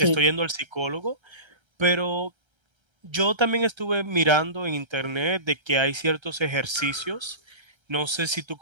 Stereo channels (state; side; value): late; left; 1.3 ms